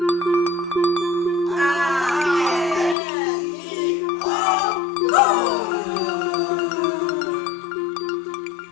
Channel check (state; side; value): drops out; right; at 3.0 s